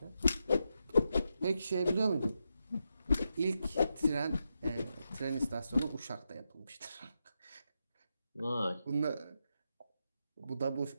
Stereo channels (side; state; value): both; inverted; correlation -0.86